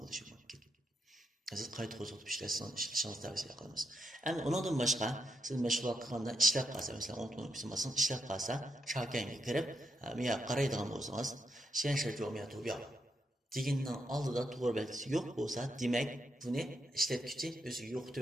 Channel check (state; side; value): normal; both; correlation 0.81